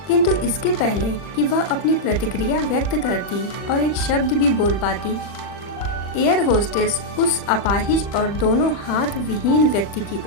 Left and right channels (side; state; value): right; late; 39 ms